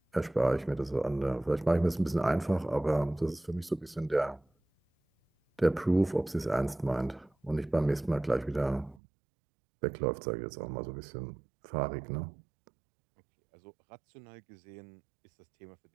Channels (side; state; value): left; drops out; at 9.0 s